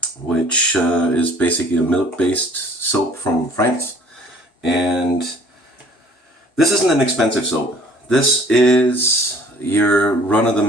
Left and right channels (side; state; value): both; normal; correlation 0.53